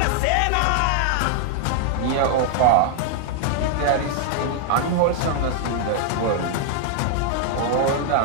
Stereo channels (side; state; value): both; different; correlation 0.00